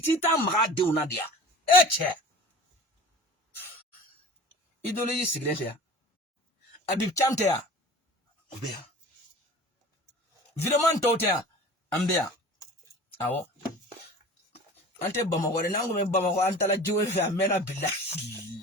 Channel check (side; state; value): both; normal; correlation 0.41